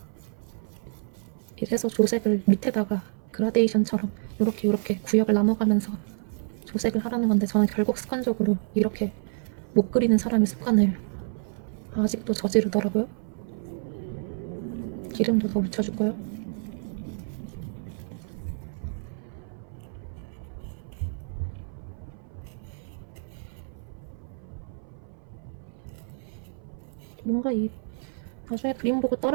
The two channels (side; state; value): left; silent; 58 dB below the other